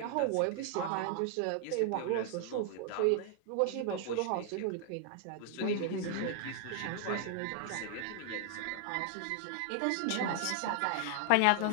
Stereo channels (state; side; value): different; both; correlation 0.00